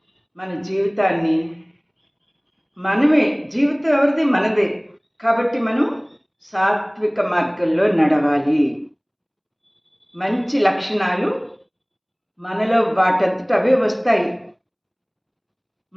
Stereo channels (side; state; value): both; identical; correlation 1.00